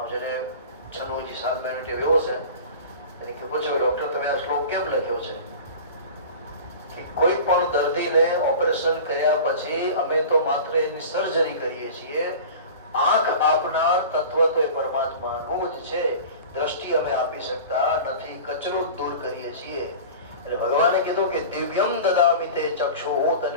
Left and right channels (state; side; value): inverted; both; correlation -0.37